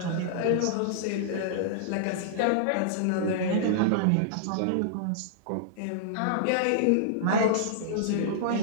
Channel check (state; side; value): different; both; correlation -0.02